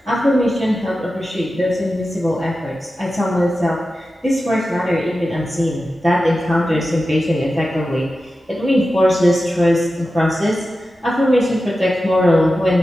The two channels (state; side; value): normal; both; correlation 0.93